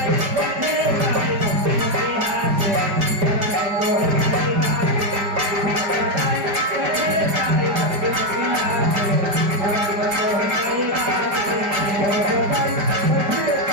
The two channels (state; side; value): late; left; 5.1 ms